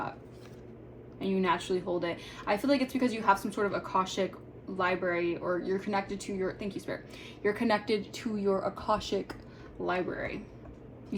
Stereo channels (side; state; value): both; identical; correlation 1.00